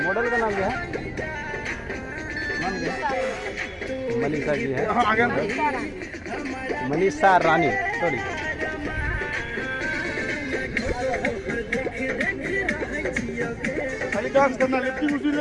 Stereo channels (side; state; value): both; identical; correlation 1.00